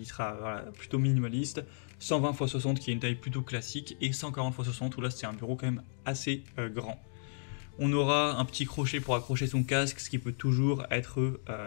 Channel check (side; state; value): right; silent; digital silence